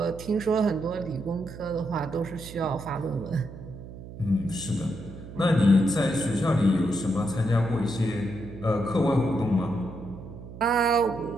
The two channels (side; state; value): right; noise; hum, 13 dB below the sound